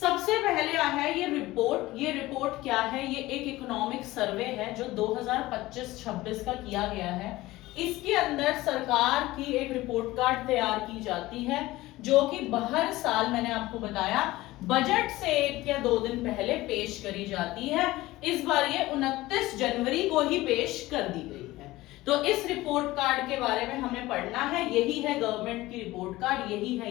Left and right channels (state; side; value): quieter; right; 18.2 dB